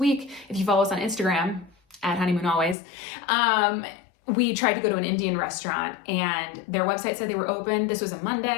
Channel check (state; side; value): drops out; right; at 2.8 s